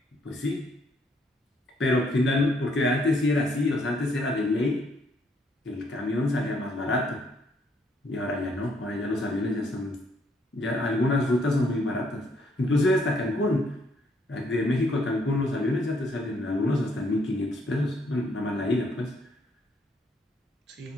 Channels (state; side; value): normal; both; correlation 0.69